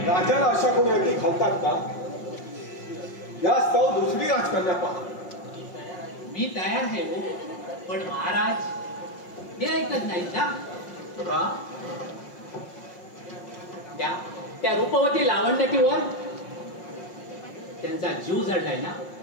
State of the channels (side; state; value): right; late; 5.6 ms